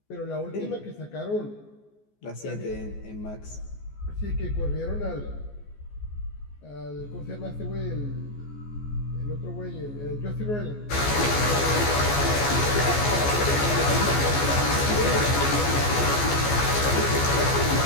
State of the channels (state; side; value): late; right; 14 ms